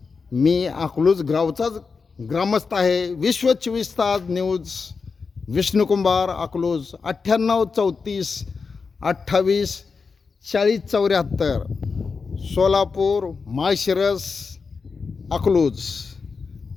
मी अकलूज गावचाच ग्रामस्थ आहे. विश्व 24 तास न्यूज, विष्णू कुंभार, अकलूज. 98 34 28 40 74, सोलापूर, माळशिरस, अकलूज.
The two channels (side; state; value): right; quieter; 5.0 dB